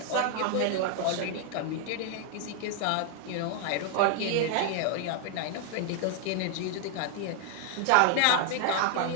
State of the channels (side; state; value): both; different; correlation 0.00